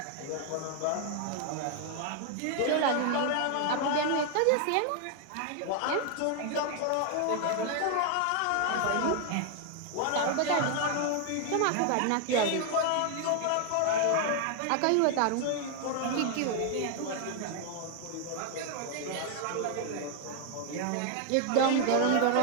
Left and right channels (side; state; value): both; different; correlation 0.00